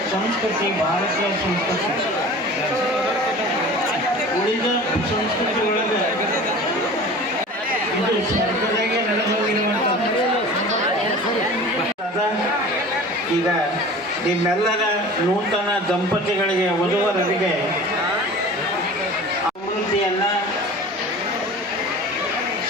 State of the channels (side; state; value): both; normal; correlation 0.39